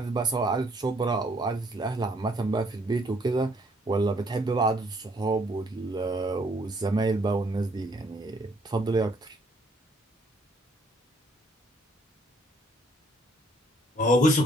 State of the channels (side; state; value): both; normal; correlation 0.66